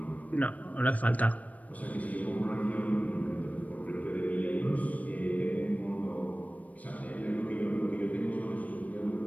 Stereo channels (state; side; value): late; right; 0.070 ms